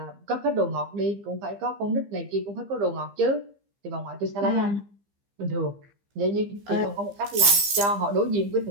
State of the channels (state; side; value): late; left; 15 ms